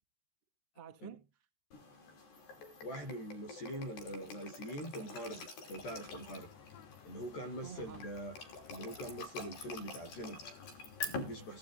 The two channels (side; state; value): right; late; 13 ms